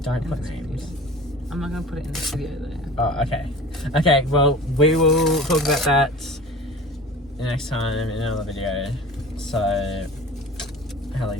Don't put names. Video. I'm not going to put it in this video, though. Oh, okay. Okay, well, we will talk about that next time in another video. So,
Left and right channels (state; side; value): normal; both; correlation 0.40